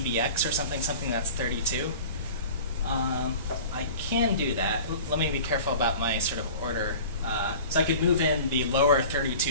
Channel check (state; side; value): inverted; both; correlation -0.40